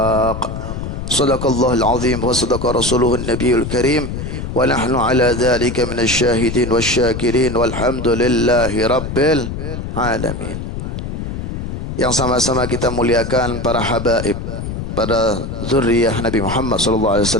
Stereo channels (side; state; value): left; noise; rumble, 6 dB below the sound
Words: صدق الله العظيم وصدق رسوله النبي الكريم ونحن على ذلك من الشاهدين والشاكرين والحمد لله رب العالمين. Yang sama-sama kita muliakan para habaib, para zuriyah Nabi Muhammad